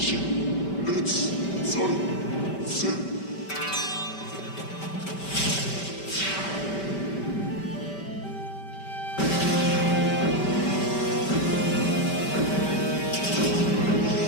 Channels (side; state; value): right; late; 4.8 ms